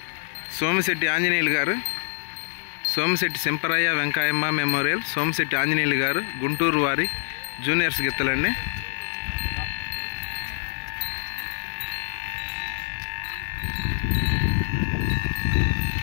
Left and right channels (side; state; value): right; silent; digital silence